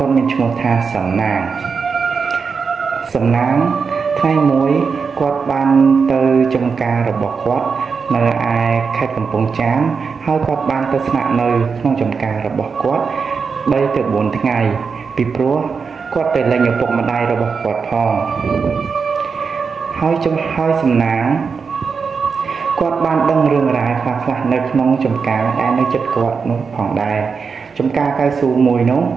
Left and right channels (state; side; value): quieter; left; 5.4 dB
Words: ាត់មានឈ្មោះថាសំណាងថ្ងៃមួយគាត់បានទៅចំការរបស់គាត់នៅឯខេត្តកំពង់ចាមហើយគាត់បានទៅស្នាក់នៅក្នុងចំការរបស់គាត់3ទៅ4ថ្ងៃពីព្រោះគាត់ទៅលេងឪពុកម្ដាយរបស់គាត់ផងហើយសំណាងគាត់បានដឹងរឿងរ៉ាវខ្លះៗនៅក្នុងចំការដែលនៅជិតគាត់នោះផងដែរចំការកៅស៊ូមួយនោះ